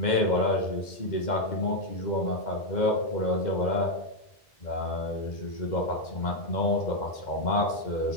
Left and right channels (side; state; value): right; late; 2.1 ms